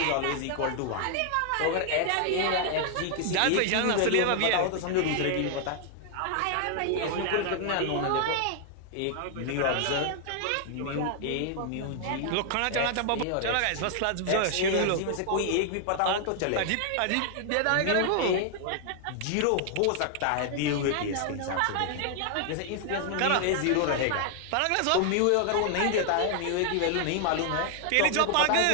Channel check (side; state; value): both; different; correlation 0.00